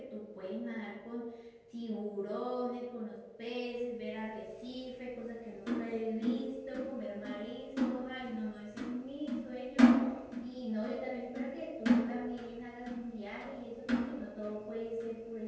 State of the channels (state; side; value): identical; both; correlation 1.00